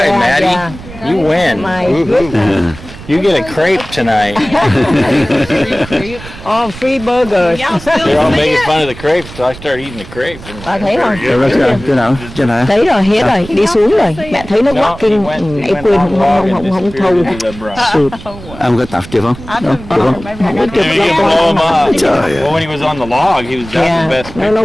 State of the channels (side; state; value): right; noise; rumble, 15 dB below the sound